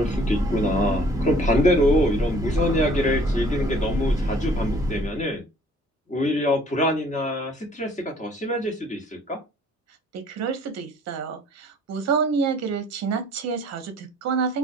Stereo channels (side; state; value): both; normal; correlation 0.56